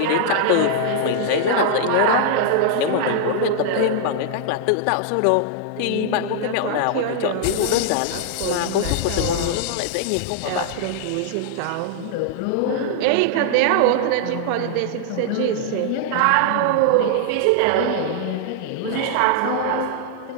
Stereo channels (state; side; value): different; both; correlation -0.01